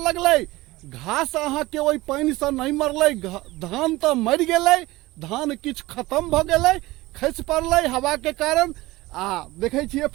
लगलै, घास अहाँ के ओहि पानि से नहीं मरलै, धान तो मर गेलै, धान किछ खत्म भ गेलै, खसि पड़लै हवा के कारण। आ देखे छिए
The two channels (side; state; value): left; quieter; 19.4 dB